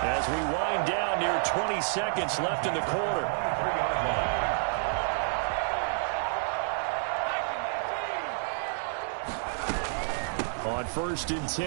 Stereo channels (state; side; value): silent; left; digital silence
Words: as we wind down near 20 seconds left in the quarter. On 1st and